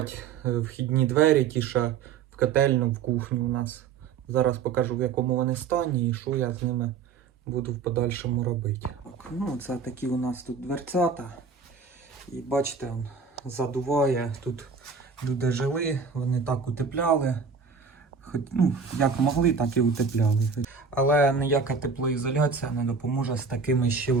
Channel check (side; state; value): left; quieter; 5.6 dB